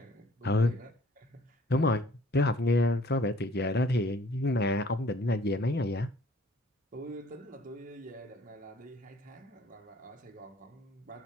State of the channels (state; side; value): normal; both; correlation 0.56